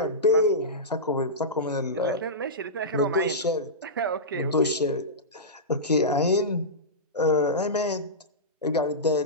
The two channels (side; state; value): both; normal; correlation -0.16